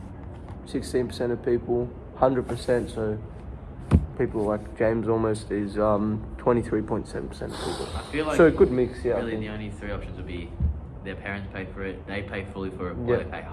16% of people, 100%, so people like James almost is 23.7% of people. I feel like So a good mix, yeah. I really think. the only three options would be their parents pay for it, they pay fully for it, or Yeah. they pay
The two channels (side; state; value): both; identical; correlation 1.00